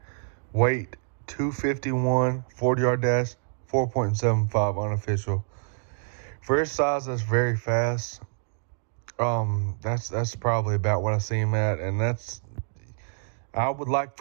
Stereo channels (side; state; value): left; silent; 60 dB below the other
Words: Weight, 251. 40-yard dash, 4.75 unofficial. For his size, that's very fast. That's probably about what I see him at, and I would like